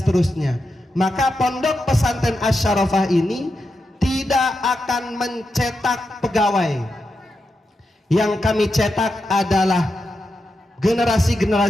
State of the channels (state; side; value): normal; both; correlation 0.87